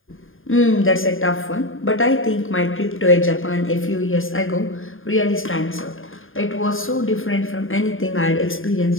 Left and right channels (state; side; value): late; right; 0.59 ms